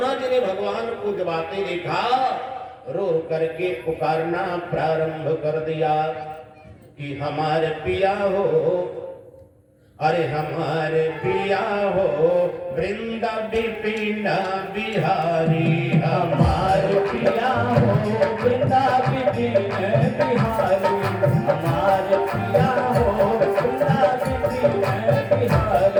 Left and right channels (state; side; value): identical; both; correlation 1.00